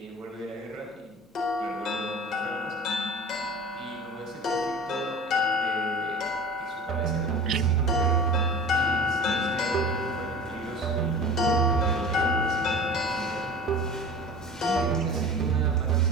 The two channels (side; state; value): both; normal; correlation 0.37